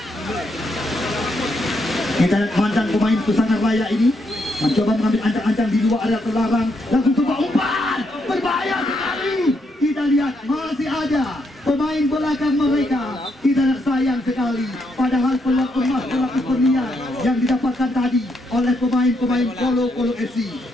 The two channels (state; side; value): normal; both; correlation 0.78